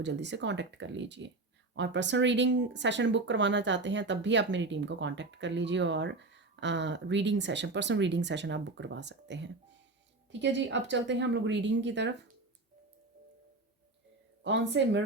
जल्दी से कांटेक्ट कर लीजिए, और पर्सनल रीडिंग सेशन बुक करवाना चाहते हैं तब भी आप मेरी टीम को कांटेक्ट कर लीजिए, और पर्सनल रीडिंग सेशन आप बुक करवा सकते हैं, ठीक है जी। अब चलते हैं हम लोग रीडिंग की तरफ। कौन से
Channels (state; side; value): quieter; left; 3.2 dB